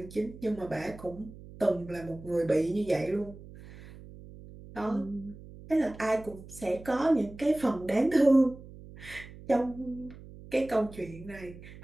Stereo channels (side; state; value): right; noise; hum, 17 dB below the sound